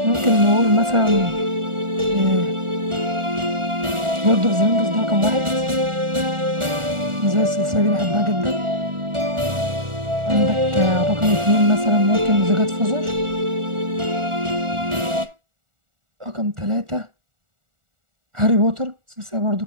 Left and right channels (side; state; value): left; late; 1.4 ms